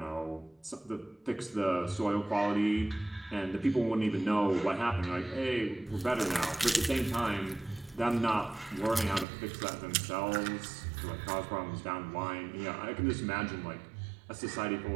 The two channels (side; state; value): left; drops out; at 9.2 s